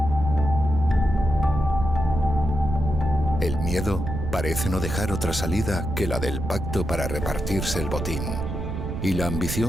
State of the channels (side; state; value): right; noise; rumble, 4 dB below the sound